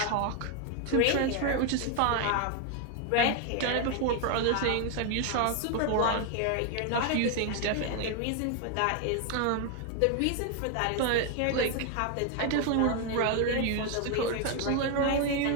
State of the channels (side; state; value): both; different; correlation 0.01